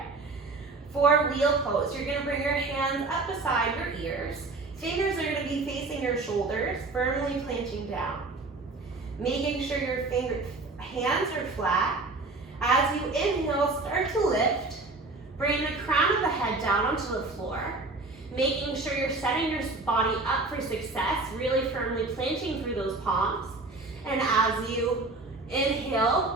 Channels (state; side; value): quieter; left; 3.4 dB